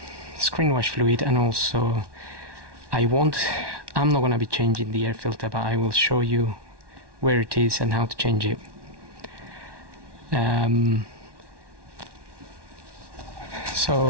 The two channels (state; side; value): late; left; 1.1 ms